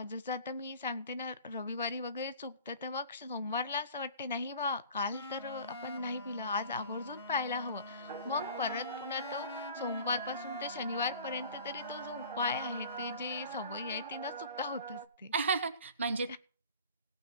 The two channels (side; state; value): both; inverted; correlation -0.44